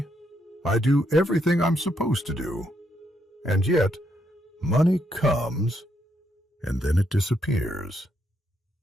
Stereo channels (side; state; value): both; normal; correlation 0.77